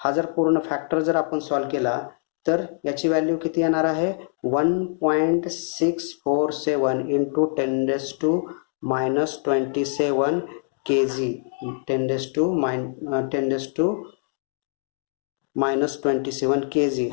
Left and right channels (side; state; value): right; silent; 63 dB below the other